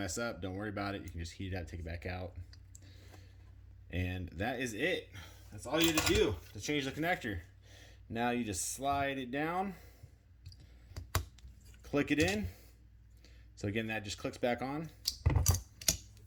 up, don't worry about it. You can just heat it up, take it back out. And that is it. That's all you had to do to change the connector. Now you just slide it down, click it in. So again, that just clicks back on.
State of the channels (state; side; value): identical; both; correlation 1.00